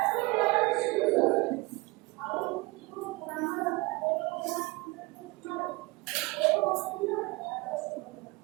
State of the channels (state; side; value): quieter; left; 24.0 dB